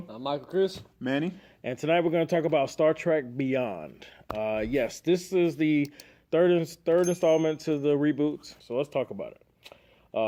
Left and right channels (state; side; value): identical; both; correlation 1.00